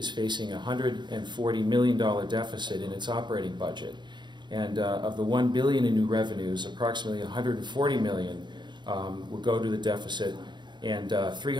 facing a $140 million deficit in its operating budget. And of the $1 billion in new revenues, approximately $140 million will go to the deficit, and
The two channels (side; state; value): left; late; 0.22 ms